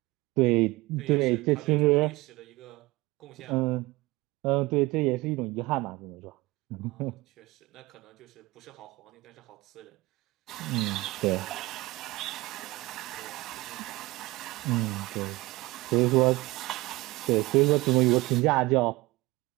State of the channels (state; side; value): quieter; left; 21.0 dB